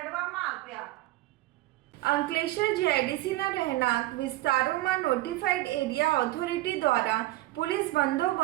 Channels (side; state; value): left; quieter; 17.3 dB